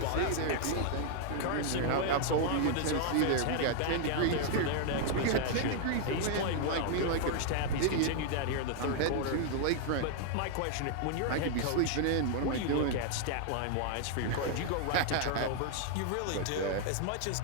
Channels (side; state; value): both; different; correlation 0.00